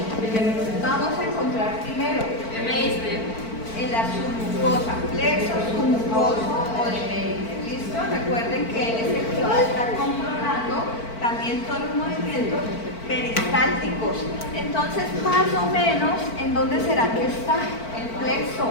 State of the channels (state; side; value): late; right; 4.5 ms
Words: vamos a encontrar primero? En la submucosa, flexo submucoso o de Meringer. ¿Listo? Recuerden que él es el que va a estar controlando también todos los movimientos peristálticos. Entonces, más o menos, ¿en dónde será que está el flexo?